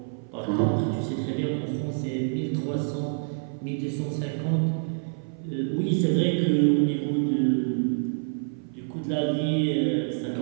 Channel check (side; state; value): left; silent; 55 dB below the other